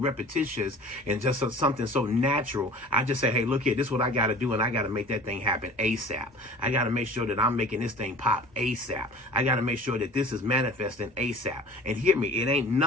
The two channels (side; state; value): both; normal; correlation 0.43